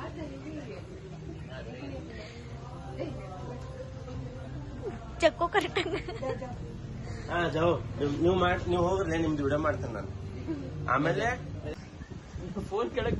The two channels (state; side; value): identical; both; correlation 1.00